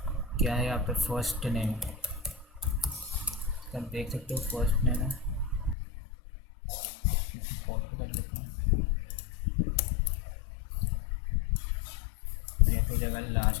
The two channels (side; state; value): right; drops out; at 5.8 s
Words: क्या है यहाँ पे फर्स्ट नेम, आप देख सकते हो फर्स्ट नेम है, कॉपी कर लेते हैं, ये हो जाएगा